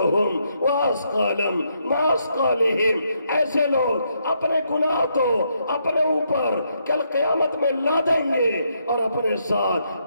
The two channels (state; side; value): inverted; both; correlation -0.77